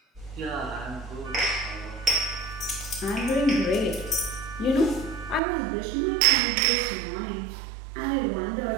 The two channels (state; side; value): drops out; left; at 5.4 s